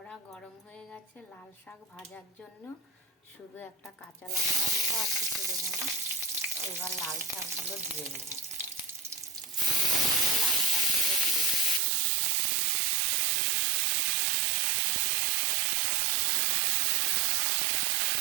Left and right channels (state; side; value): drops out; left; at 11.8 s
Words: গরম হয়ে গেছে লাল শাক ভাজার জন্য। শুধু একটা কাঁচা লঙ্কা দেবো, আর কিছু দেবো না। এবার লাল শাকগুলো দিয়ে দেবো। লাল শাকগুলো দিয়ে দেবো।